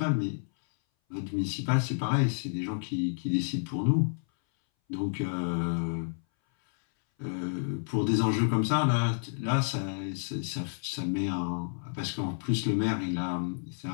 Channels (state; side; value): silent; right; 58 dB below the other